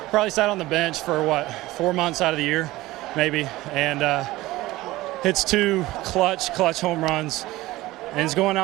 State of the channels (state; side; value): quieter; left; 18.1 dB